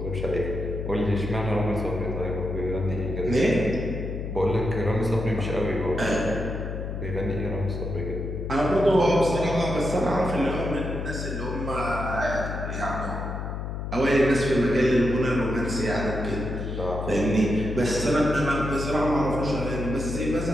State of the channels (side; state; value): left; noise; hum, 5 dB below the sound